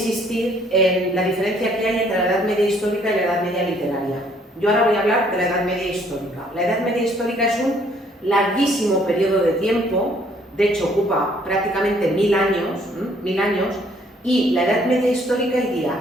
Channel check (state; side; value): normal; both; correlation 0.63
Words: en la diferencia que hay entre la Edad Media histórica y la Edad Media literaria. Yo ahora voy a hablar de la Edad Media histórica. La Edad Media histórica es un larguísimo periodo de tiempo, de hecho ocupa prácticamente 1000 años, y la Edad Media histórica